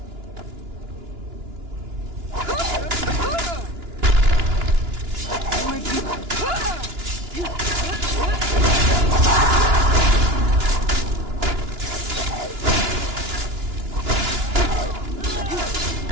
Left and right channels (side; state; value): left; late; 2.9 ms